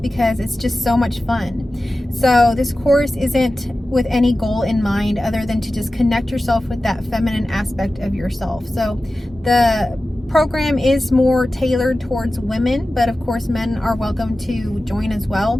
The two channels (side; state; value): both; normal; correlation 0.95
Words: it's just so much fun. So this course isn't with any goal in mind other than to just connect yourself with that feminine aspect of yourself. So the program is more tailored towards women, but of course men are welcome to join as well.